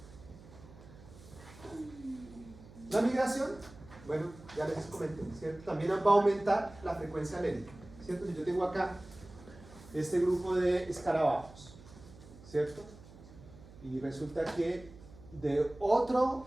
La migración, bueno, ya les comenté, ¿cierto? También va a aumentar la frecuencia alélica, ¿cierto? Si yo tengo acá este grupo de escarabajos, ¿cierto? Y resulta que de otro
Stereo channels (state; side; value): noise; right; hum, 20 dB below the sound